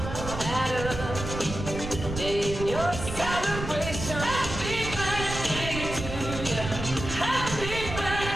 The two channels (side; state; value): right; noise; rumble, 7 dB below the sound